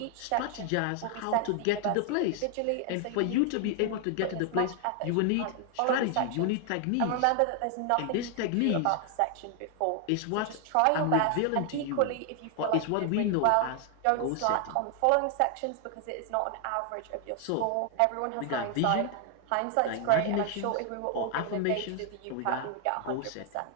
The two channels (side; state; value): both; different; correlation 0.00